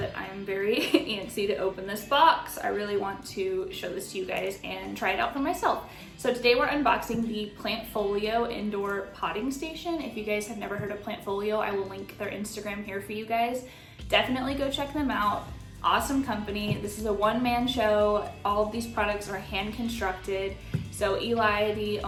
I'm very antsy to open this box. I really want to show this to you guys and try it out for myself. So today we're unboxing the Plantfolio indoor potting station. If you guys have never heard of Plantfolio, I will link their Instagram here for you guys. Definitely go check them out. Awesome company. This is a one-man show. All of these products are hand constructed. So Eli, the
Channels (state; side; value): identical; both; correlation 1.00